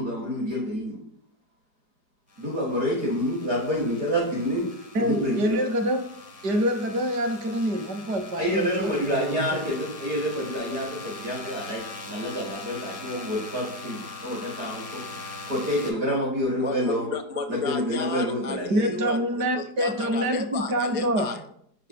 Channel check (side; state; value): left; late; 4.8 ms